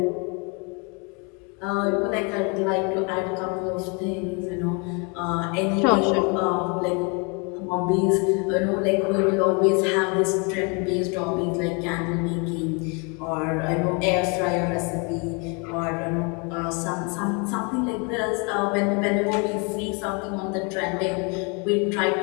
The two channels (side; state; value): right; quieter; 33.2 dB